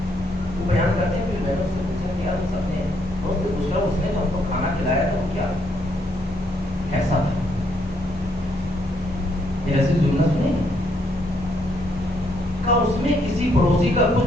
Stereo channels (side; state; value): both; normal; correlation 0.73